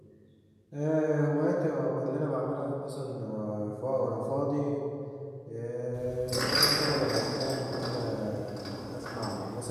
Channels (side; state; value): both; identical; correlation 1.00